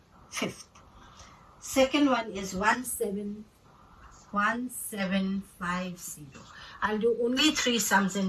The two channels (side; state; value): both; identical; correlation 1.00